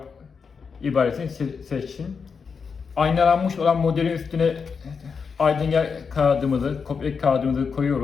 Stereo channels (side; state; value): right; quieter; 5.7 dB